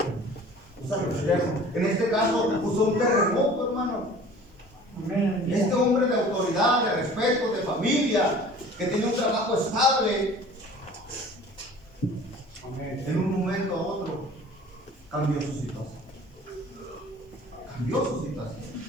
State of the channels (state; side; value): normal; both; correlation 0.46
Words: usar lo externo. En este caso usó un terremoto, hermano. Este hombre de autoridad, de respeto, de familia, que tiene un trabajo estable, en un momento a otro cambió su situación. Cambió su situación.